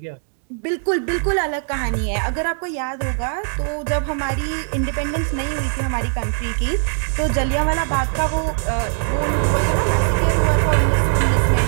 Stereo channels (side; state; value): left; silent; digital silence